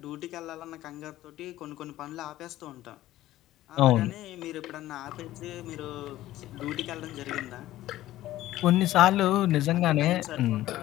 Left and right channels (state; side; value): quieter; right; 15.0 dB